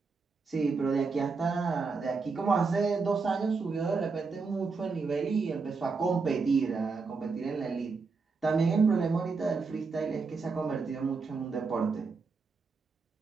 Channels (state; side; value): quieter; left; 4.5 dB